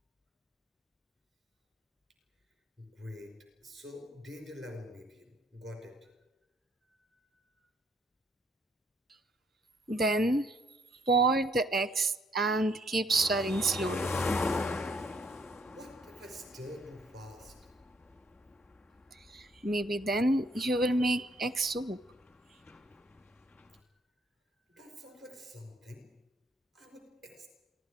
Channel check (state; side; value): normal; both; correlation 0.67